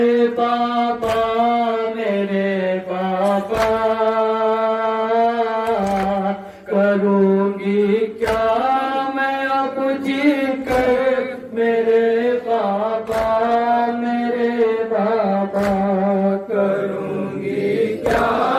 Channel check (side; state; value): both; identical; correlation 1.00